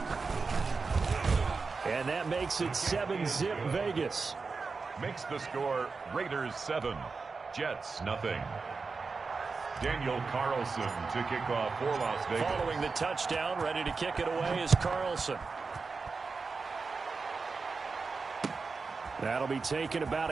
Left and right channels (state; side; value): quieter; left; 4.5 dB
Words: And that makes it 7-zip Vegas. Makes the score Raiders 7, Jets nothing. Daniel Carlson to kick off for Las Vegas. Following the touchdown, ready to kick it away is Carlson. That'll be taken about